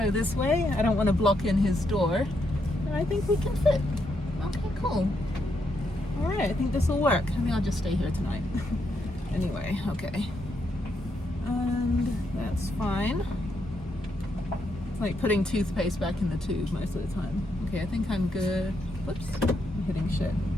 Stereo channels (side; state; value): both; normal; correlation 0.79